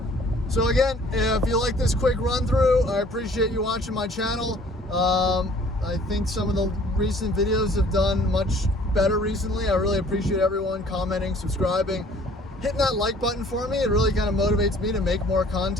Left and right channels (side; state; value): both; normal; correlation 0.54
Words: So again, if you like this quick run through, I appreciate you watching my channel. I think some of the recent videos have done much better recently. I really appreciate everyone commenting, subscribing, hitting that like button for me. It really kind of motivates me to make more